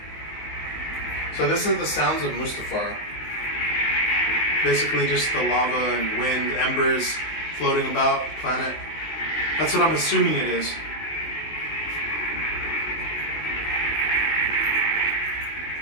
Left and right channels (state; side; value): late; right; 19 ms